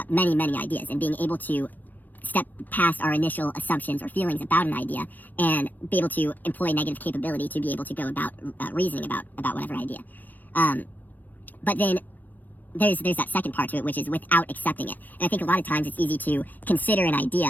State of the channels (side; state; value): right; late; 0.084 ms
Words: many ideas and being able to step past our initial assumptions or feelings about an idea and be able to employ negative capability to be able to go about reasoning about whatever idea. But then there's that second part to it, which is without accepting it. And I think a lot of times it's easy to consider an